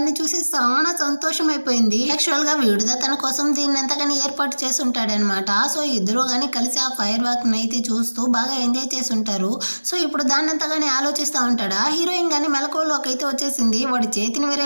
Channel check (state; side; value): inverted; both; correlation -1.00